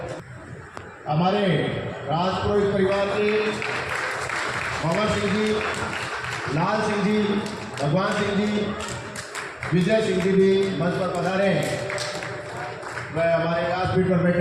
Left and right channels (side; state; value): both; identical; correlation 1.00